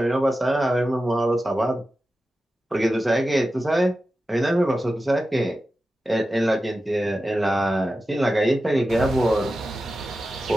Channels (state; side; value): normal; both; correlation 0.93